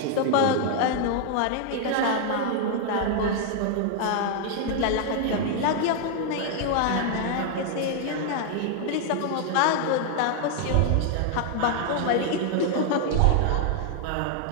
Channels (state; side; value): different; both; correlation 0.00